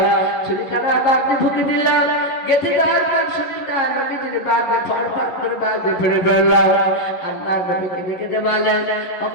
ছুরিখানা বাবজি ঢুকে দিলাম। গেঁথে দেওয়ার পর শরীরটা নবীজির বাবজি ফরফর করে বাবজি ফেলে ফেললাম। আল্লাহ নবীকে দেখে দে বলেন,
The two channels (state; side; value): late; right; 11 ms